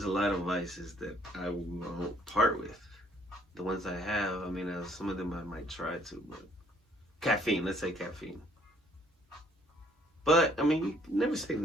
a lot of vices that I won't part with. The ones I have, I mean, some of them I might try to, but caffeine. Let's say caffeine. But I mean, you never say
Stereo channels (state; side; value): normal; both; correlation 0.62